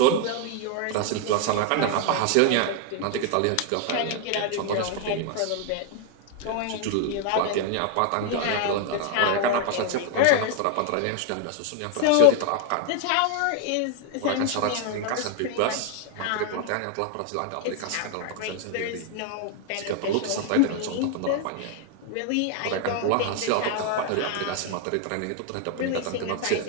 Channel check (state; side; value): different; both; correlation 0.01